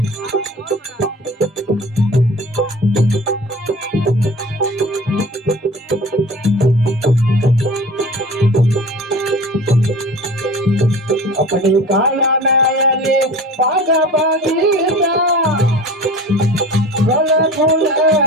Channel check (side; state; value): both; normal; correlation 0.39